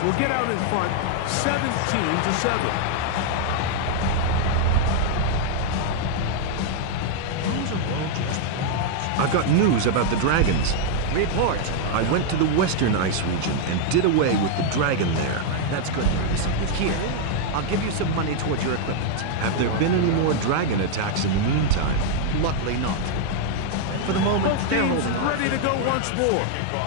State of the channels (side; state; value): both; different; correlation 0.00